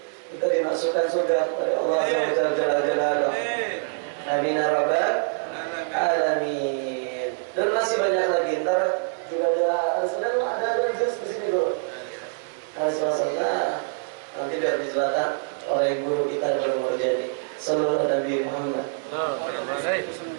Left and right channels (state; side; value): silent; left; 62 dB below the other